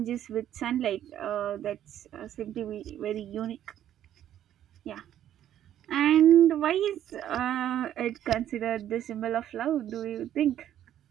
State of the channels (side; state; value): left; quieter; 11.2 dB